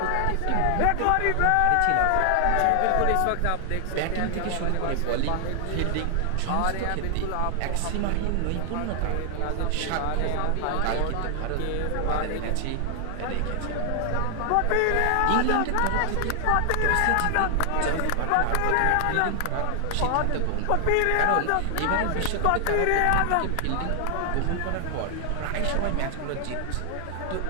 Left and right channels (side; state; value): both; different; correlation 0.00